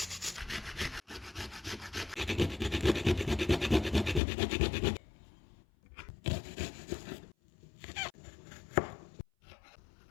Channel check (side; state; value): right; drops out; at 4.2 s